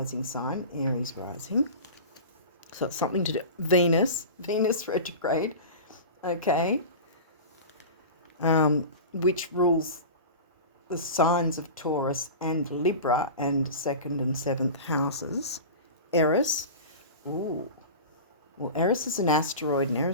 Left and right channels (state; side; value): inverted; both; correlation -0.32